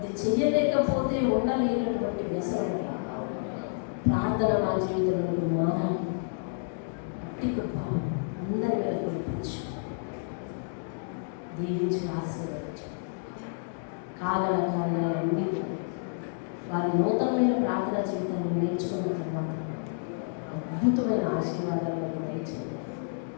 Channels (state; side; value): silent; right; digital silence